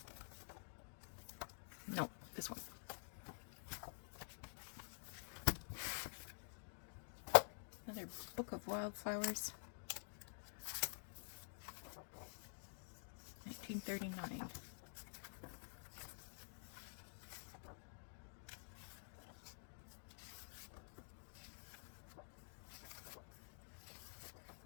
No, this one. Another book of wildflowers. $39.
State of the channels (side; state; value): right; silent; digital silence